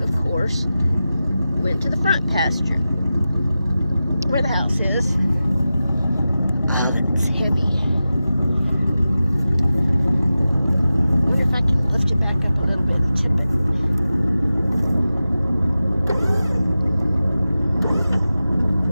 course, went to the front pasture, where the house is. Oh, that's heavy. I wonder if I can lift it back up a little bit and tip it.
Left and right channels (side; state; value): both; inverted; correlation -0.94